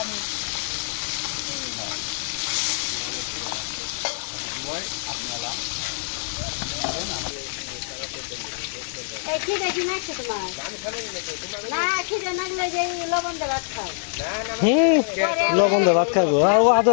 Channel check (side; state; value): right; silent; 59 dB below the other